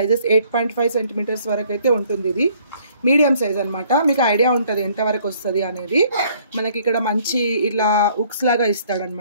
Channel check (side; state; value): both; inverted; correlation -0.61